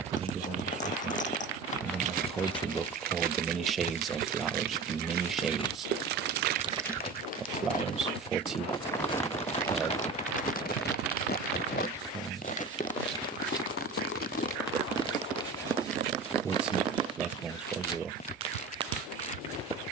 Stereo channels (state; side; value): quieter; left; 4.4 dB